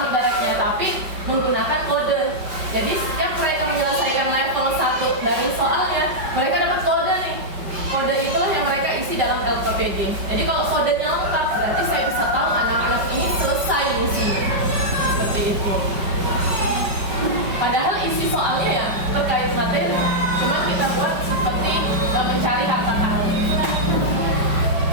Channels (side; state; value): left; late; 5.2 ms